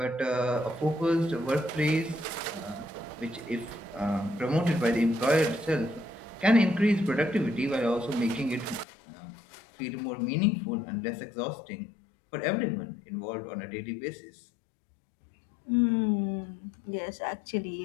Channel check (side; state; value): right; drops out; at 8.8 s